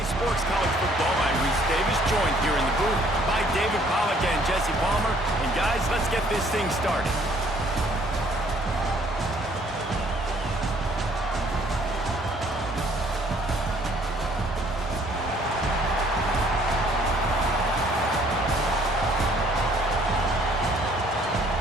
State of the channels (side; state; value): both; normal; correlation 0.61